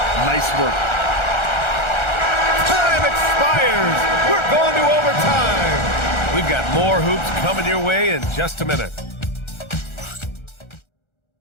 Nice work. Time expires. We're going to overtime. We've got more hoops coming your way in just a minute.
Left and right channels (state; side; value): late; right; 1.4 ms